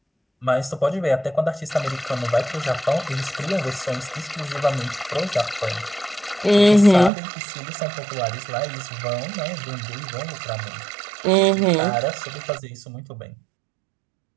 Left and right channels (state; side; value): drops out; left; at 7.1 s